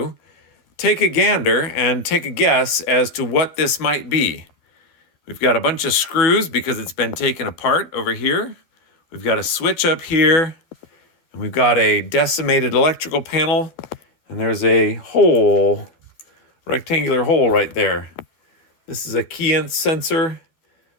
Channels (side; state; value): right; late; 12 ms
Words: take a gander and take a guess as to what this might be. We've got a bunch of screws because it's been taken apart over here. We've got a switch up here, and we've got a decimated electrical panel, and there's a hole, rectangular hole right there. This is a key sensor,